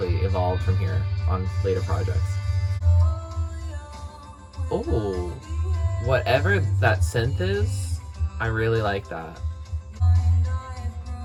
evolved from here on later projects. Oh, whatever that synth is, I really like that.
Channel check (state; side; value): identical; both; correlation 1.00